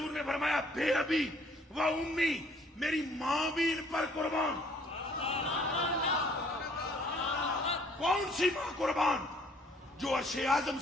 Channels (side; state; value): both; normal; correlation 0.59